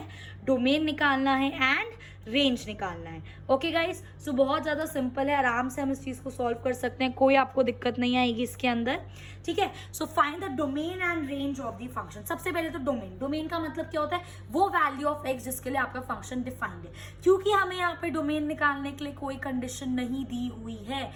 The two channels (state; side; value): identical; both; correlation 1.00